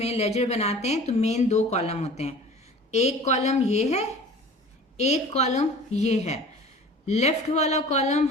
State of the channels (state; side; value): normal; both; correlation 0.43